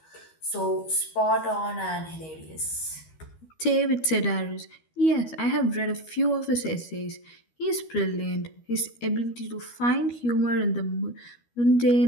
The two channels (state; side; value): late; right; 13 ms